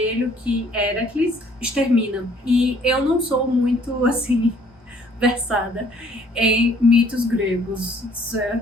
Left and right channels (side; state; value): both; normal; correlation 0.60